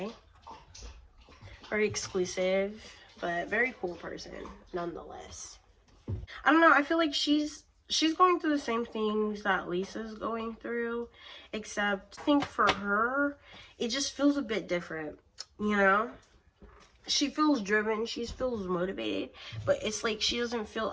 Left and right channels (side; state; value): both; identical; correlation 1.00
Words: Very exclusive, but very cool person nonetheless. I don't know. I feel like she's she's going through the same things that Lisa's going through, except I think for her, it just feels a bit different, you know? She feels driven, she feels motivated, but it's like she doesn't feel